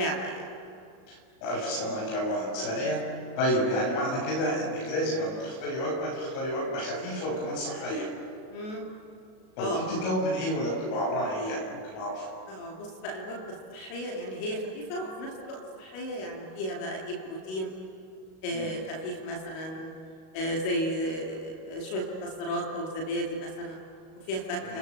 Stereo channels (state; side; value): late; right; 37 ms